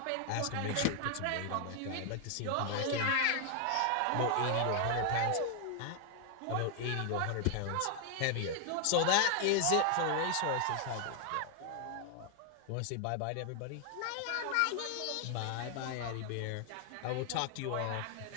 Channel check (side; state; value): both; different; correlation 0.00